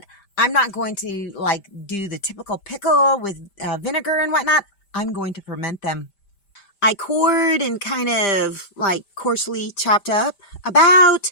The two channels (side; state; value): right; late; 5.0 ms